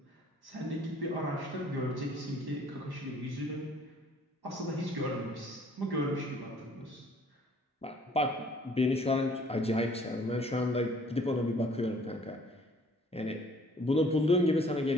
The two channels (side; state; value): both; normal; correlation 0.58